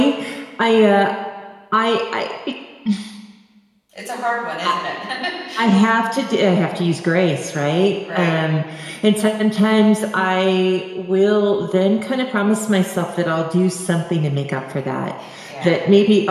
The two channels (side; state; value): both; identical; correlation 1.00